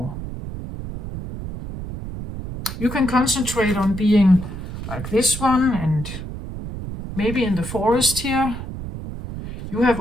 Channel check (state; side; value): noise; right; rumble, 8 dB below the sound